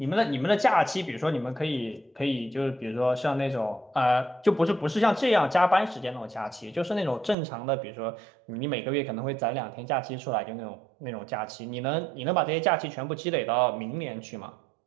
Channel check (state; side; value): drops out; left; at 7.4 s